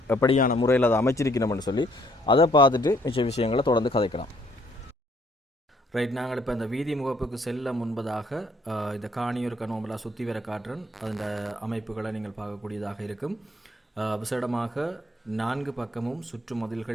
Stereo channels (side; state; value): both; normal; correlation 0.66